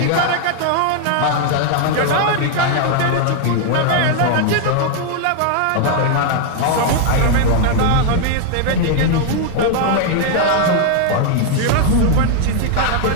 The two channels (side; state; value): both; different; correlation 0.00